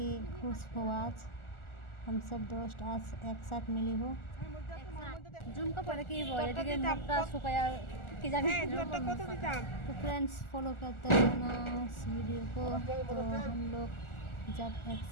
खुश हुआ। आज हम सब दोस्त आज एक साथ मिली हो। जूम का पड़े कि मुखटा सुखाया कि जाने। तो फ्रेंड्स फॉलो करते रहना इस वीडियो को। तो हम लोग जब एक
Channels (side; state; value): right; late; 1.4 ms